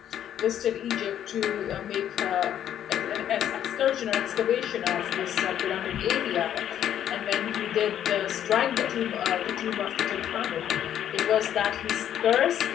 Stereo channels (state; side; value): quieter; right; 10.5 dB